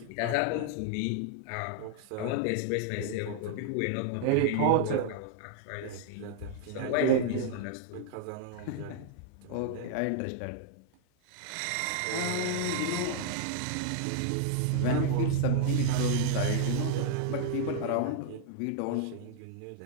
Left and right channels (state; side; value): different; both; correlation -0.01